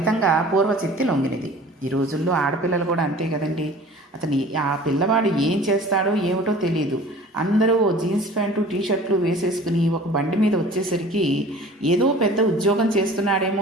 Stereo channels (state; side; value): normal; both; correlation 0.45